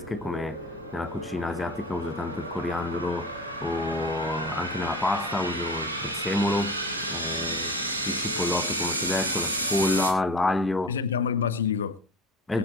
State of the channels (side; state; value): both; normal; correlation 0.34